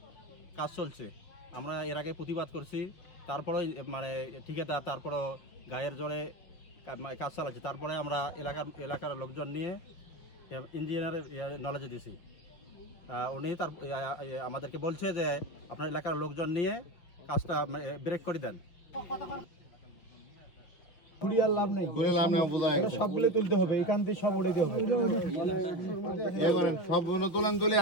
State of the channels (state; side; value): late; right; 5.9 ms